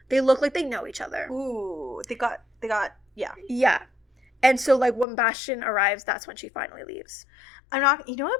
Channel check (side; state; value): right; drops out; at 5.1 s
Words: they look like they know each other. Ooh, they got, yeah. Yeah. And so, like, when Bastian arrives, that's when she finally leaves. You know